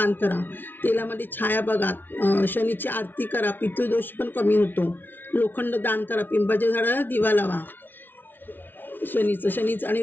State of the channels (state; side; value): late; right; 0.094 ms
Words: करा. तेलामध्ये छाया बघा. शनीची आरती करा, पितृदोष पण कमी होतो. लोखंड दान करा. पिंपाच्या झाडाला दिवा लावा. शनीचं आणि